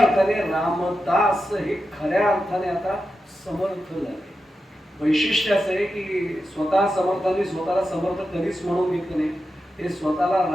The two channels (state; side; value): normal; both; correlation 0.90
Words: रामदास हे खऱ्या अर्थाने आता समर्थ झाले. वैशिष्ट्य असं आहे की स्वतः समर्थांनी स्वतःला समर्थ कधीच म्हणून घेतलं नाही, ते स्वतःला